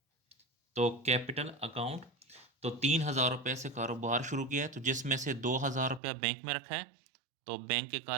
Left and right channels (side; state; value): left; drops out; at 6.0 s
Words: तो कैपिटल अकाउंट, तो 3000 रुपये से कारोबार शुरू किया है, तो जिसमें से 2000 रुपया बैंक में रखा है, तो बैंक के